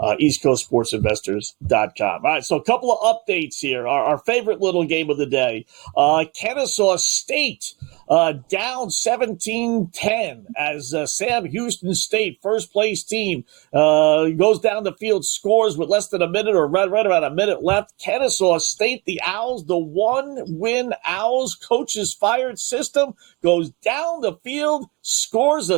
EastCoastSportsInvestors.com. All right, so a couple of updates here. Our favorite little game of the day, Kennesaw State down 17-10 as Sam Houston State, first place team, goes down the field, scores with less than a minute or right about a minute left. Kennesaw State, the Owls, the one-win Owls, coaches fired system, goes down the field, scores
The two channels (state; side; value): quieter; left; 26.2 dB